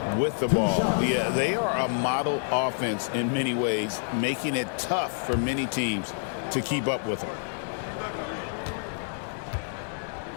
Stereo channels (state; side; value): silent; right; digital silence